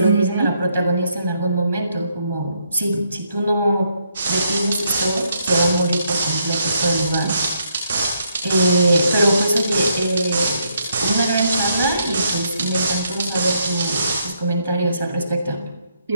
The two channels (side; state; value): both; inverted; correlation -0.75